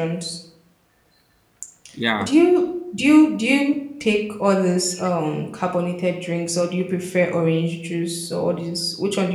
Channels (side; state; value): both; identical; correlation 1.00